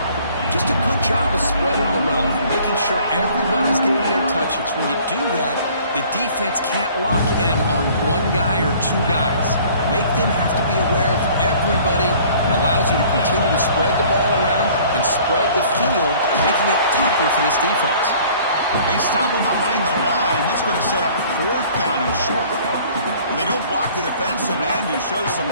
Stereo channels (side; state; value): both; inverted; correlation -0.53